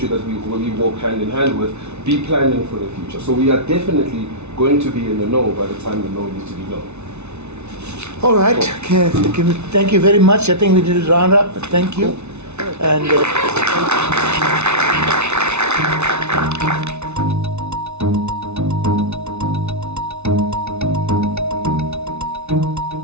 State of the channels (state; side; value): late; left; 0.81 ms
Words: that we walk hand in hand with, be planning for the future? So we are definitely going to be in the know by the time the know needs to be known. All right. Okay. Thank you very much. I think we did a round up. Thank you. And